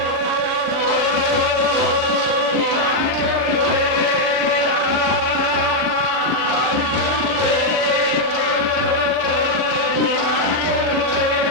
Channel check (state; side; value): late; left; 40 ms